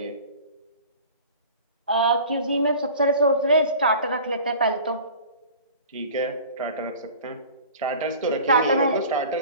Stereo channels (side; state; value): both; inverted; correlation -0.42